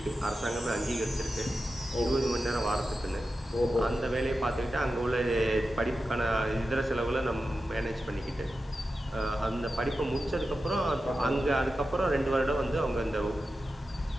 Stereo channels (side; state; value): both; normal; correlation 0.91